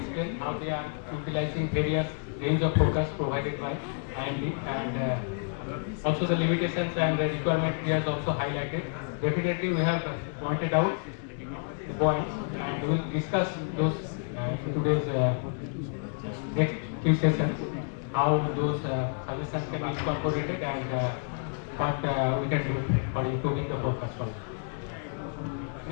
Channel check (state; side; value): silent; right; 55 dB below the other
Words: how they are utilizing various range of focus provided by IMD, and also the limitations and the requirement he has also highlighted. Definitely we have pointed out the points, and we will discuss those in today's next few sessions, how those suggestions can be incorporated and what we can do for improving the forecast.